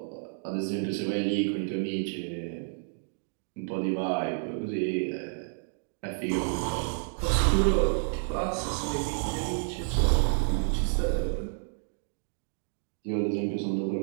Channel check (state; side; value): silent; left; digital silence